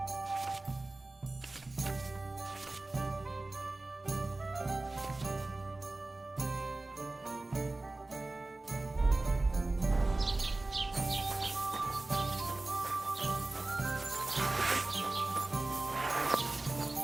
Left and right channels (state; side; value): quieter; left; 3.0 dB